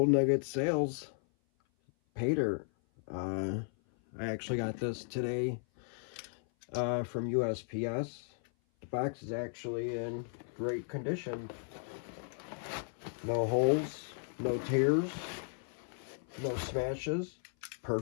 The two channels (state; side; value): silent; right; 54 dB below the other